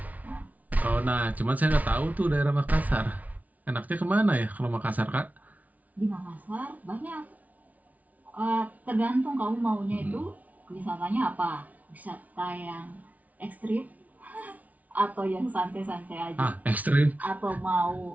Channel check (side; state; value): left; late; 0.073 ms